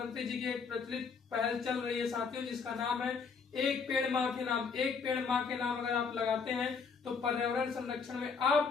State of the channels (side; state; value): right; quieter; 5.4 dB